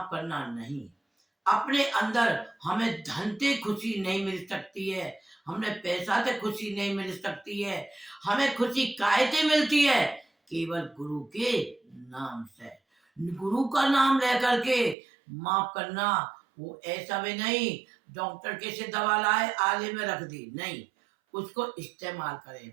करना नहीं, अपने अंदर हमें धन से खुशी नहीं मिल सकती है, हमें पैसा से खुशी नहीं मिल सकती है, हमें खुशी काहे से मिलती है? केवल गुरु के नाम से। गुरु का नाम लेकर के माफ करना, वो ऐसा भी नहीं डॉक्टर कैसे दवा लाए आले में रख दी, नहीं, उसको इस्तेमाल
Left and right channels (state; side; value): drops out; left; at 15.0 s